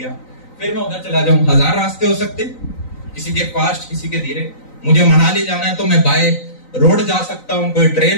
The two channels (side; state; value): right; late; 3.9 ms